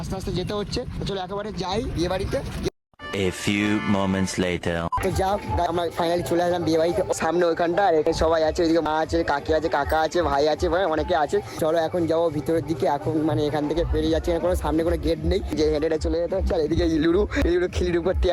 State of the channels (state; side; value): identical; both; correlation 1.00